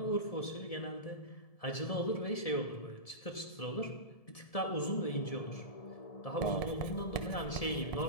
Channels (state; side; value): late; right; 1.7 ms